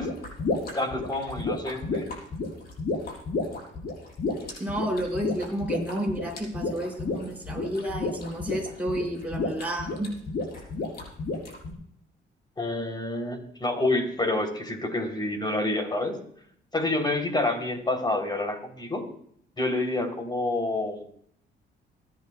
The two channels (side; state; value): both; normal; correlation 0.50